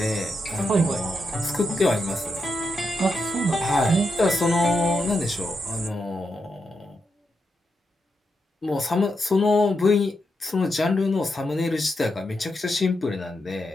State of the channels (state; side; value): normal; both; correlation 0.84